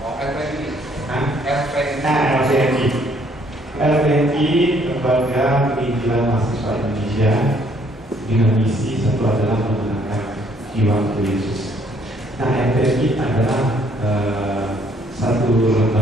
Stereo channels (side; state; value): both; normal; correlation 0.65